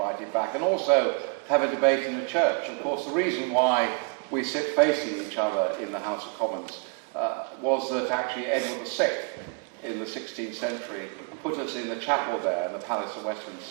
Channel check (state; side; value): quieter; left; 34.8 dB